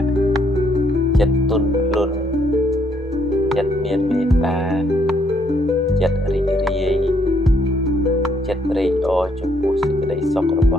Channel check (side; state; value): both; normal; correlation 0.70